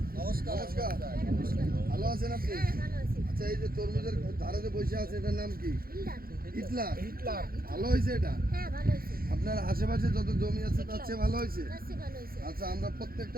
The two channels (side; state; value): left; late; 0.43 ms